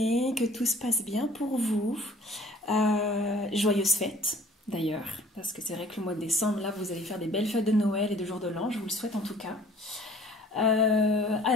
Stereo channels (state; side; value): normal; both; correlation 0.52